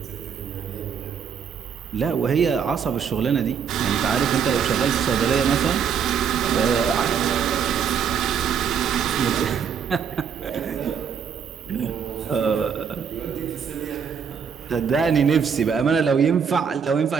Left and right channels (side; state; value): left; quieter; 7.1 dB